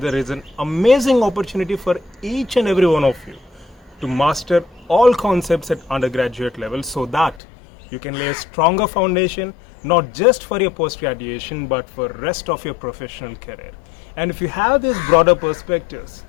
is an amazing opportunity for each and every one of you to master all concepts at undergraduate level so that you can lay a stronger foundation not just for your post-graduation but for rest of your professional career. And if you have these broader perspectives,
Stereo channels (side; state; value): right; drops out; at 7.4 s